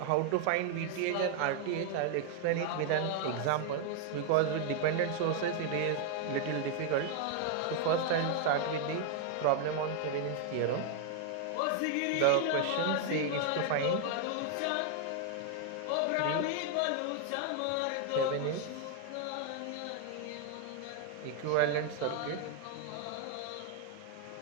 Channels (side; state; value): both; different; correlation 0.00